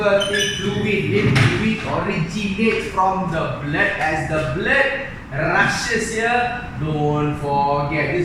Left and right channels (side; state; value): both; identical; correlation 1.00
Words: fluid. Lymph fluid originates from the blood. As the blood rushes here, don't forget